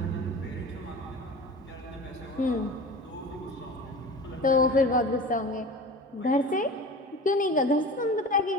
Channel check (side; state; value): both; normal; correlation 0.35